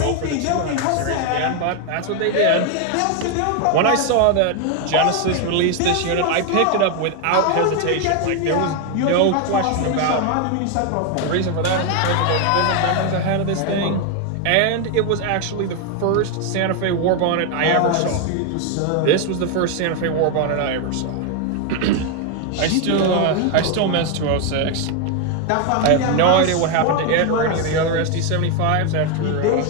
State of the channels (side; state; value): both; different; correlation 0.01